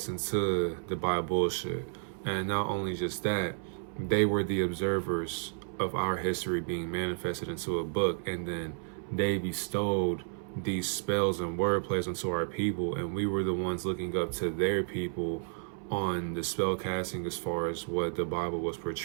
into the Bible bullshit. And not only just that, they were the observers of our history being manifested into a book, and then they bestowed these spells and wordplays onto our people, and we were the ones looking up to their people on the spell casting as far as what the Bible was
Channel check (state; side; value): silent; left; 57 dB below the other